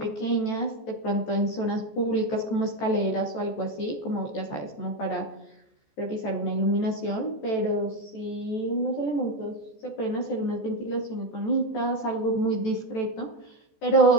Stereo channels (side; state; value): right; late; 14 ms